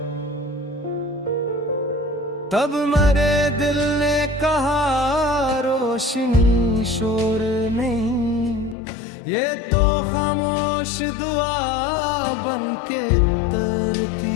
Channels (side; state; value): right; drops out; at 8.8 s